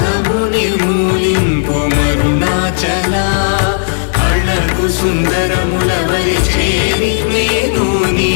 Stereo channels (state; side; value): silent; right; digital silence